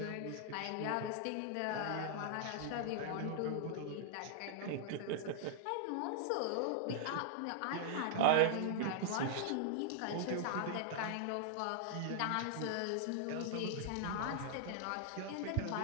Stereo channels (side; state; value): both; different; correlation -0.01